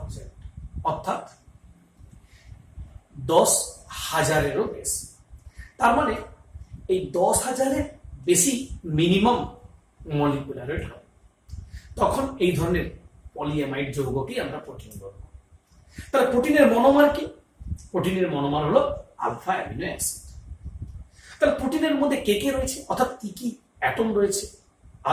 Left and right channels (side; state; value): both; identical; correlation 1.00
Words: অর্থাৎ 10,000-এরও বেশি। তার মানে এই 10,000-এর বেশি মিনিমাম মলিকুলার ওয়েট হয়, তখন এই ধরনের পলিঅ্যামাইড যৌগকেই আমরা প্রোটিন বলবো। তাহলে প্রোটিনের মনোমার কি? প্রোটিনের মনোমার হলো আলফা অ্যামিনো অ্যাসিড। তাহলে প্রোটিনের মধ্যে কে কে রয়েছে, অর্থাৎ কি কি অ্যাটম রয়েছে?